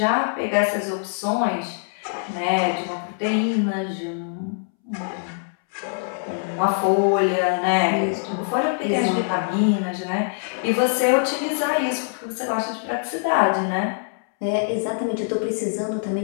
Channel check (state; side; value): silent; right; 63 dB below the other